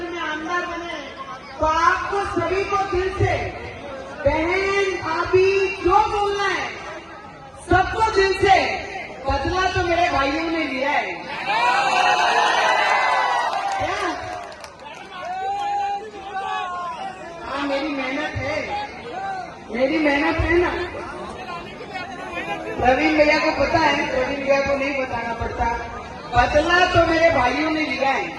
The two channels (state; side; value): identical; both; correlation 1.00